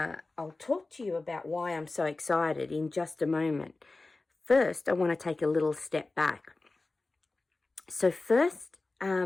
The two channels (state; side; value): quieter; right; 3.3 dB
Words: talk to you about why I'm so excited in just a moment. First, I want to take a little step back. So first,